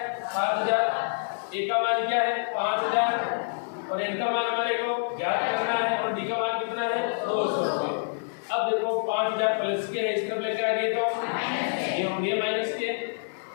7000, ए का मान क्या है 5000 और एन का मान हमारे को ज्ञात करना है और डी का मान कितना है 200 रुपये। अब देखो 5000 प्लस के है, इस तरफ लेके आ गए तो ये हो गए माइनस के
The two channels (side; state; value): right; silent; digital silence